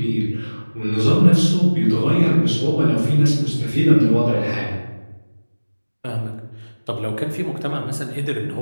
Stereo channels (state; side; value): inverted; both; correlation -1.00